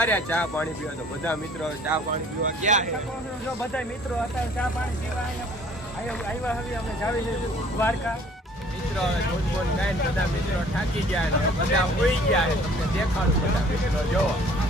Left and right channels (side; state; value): both; normal; correlation 0.54